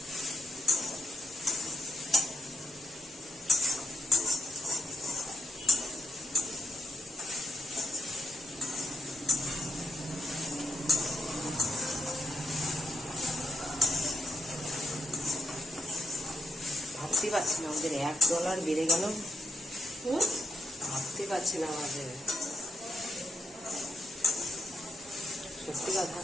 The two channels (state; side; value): normal; both; correlation 0.80